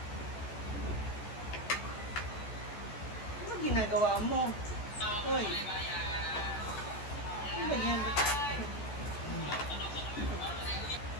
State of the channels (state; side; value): late; right; 14 ms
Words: Ano ginagawa mo? Hoy. Ano ba yan?